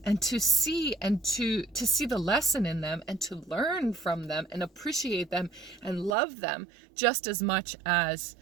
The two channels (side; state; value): left; drops out; at 6.2 s